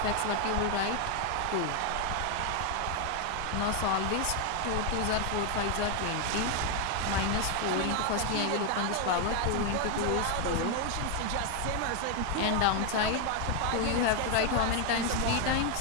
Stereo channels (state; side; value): different; both; correlation 0.01